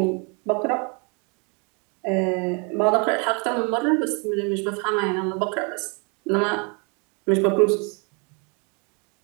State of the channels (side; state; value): left; quieter; 34.3 dB